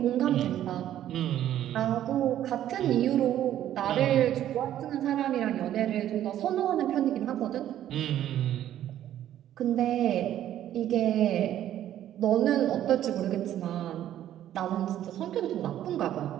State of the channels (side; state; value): left; quieter; 11.8 dB